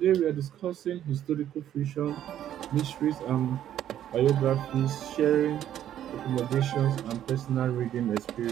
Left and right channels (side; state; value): left; quieter; 11.1 dB